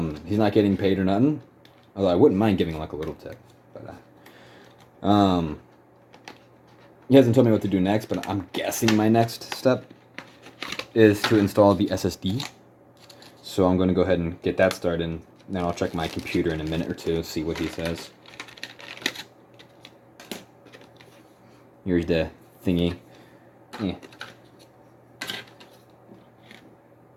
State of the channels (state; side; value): identical; both; correlation 1.00